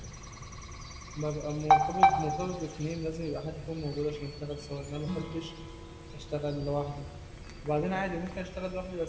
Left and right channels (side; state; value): both; identical; correlation 1.00